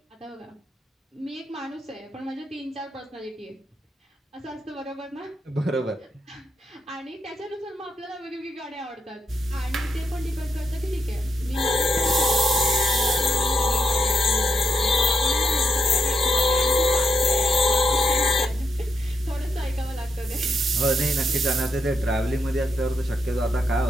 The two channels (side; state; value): both; normal; correlation 0.80